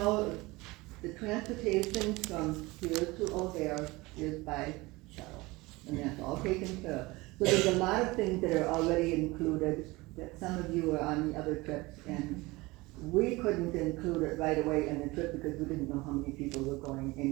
the transportation from here to O'Hare is by shuttle, and that's all taken care of. So there's a lot of things that are already included that some of you are on the other trips, and we couldn't include it right away in the trip because we didn't know how many people were going,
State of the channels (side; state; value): left; quieter; 22.0 dB